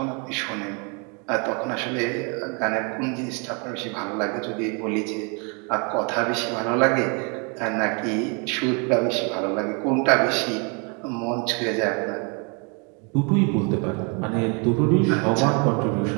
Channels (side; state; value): left; quieter; 34.4 dB